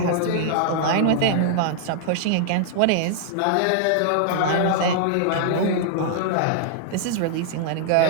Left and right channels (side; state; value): both; different; correlation -0.01